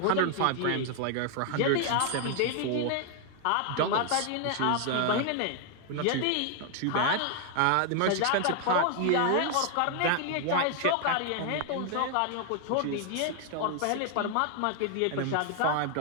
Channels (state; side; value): different; both; correlation 0.00